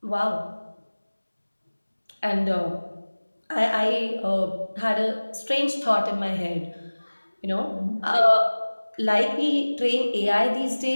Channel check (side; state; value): both; inverted; correlation -1.00